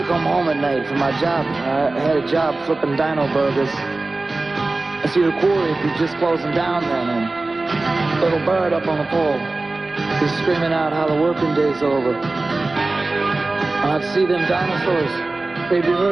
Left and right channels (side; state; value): left; quieter; 3.2 dB